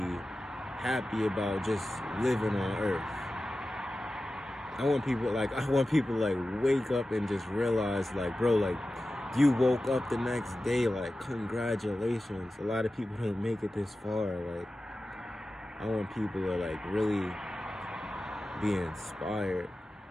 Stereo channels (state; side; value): normal; both; correlation 0.94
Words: happy about just living on earth. I want people like wake up and just realize, like, bro, like, you woke up the next day, like, congratulations. A lot of people don't make it this far. Like, I want people to like really be inspired